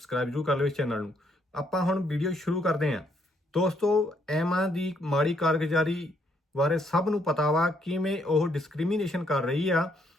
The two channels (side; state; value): both; normal; correlation 0.71